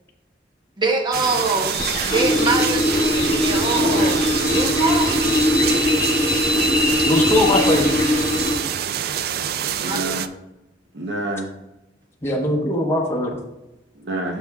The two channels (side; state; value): both; normal; correlation 0.45